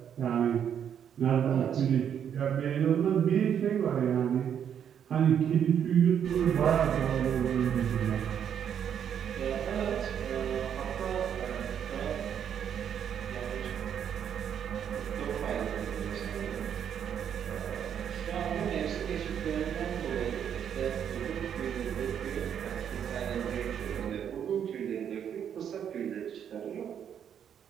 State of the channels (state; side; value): quieter; left; 8.7 dB